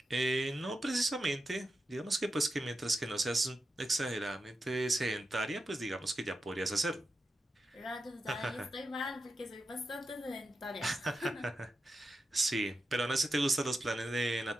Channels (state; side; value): normal; both; correlation 0.89